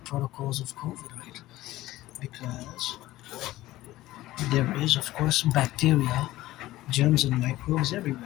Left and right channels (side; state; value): right; quieter; 16.5 dB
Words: of COVID, right? Because there is, of course, bacteria, germs, and microbes